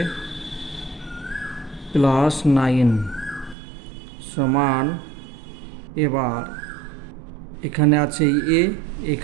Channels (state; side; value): drops out; left; at 3.6 s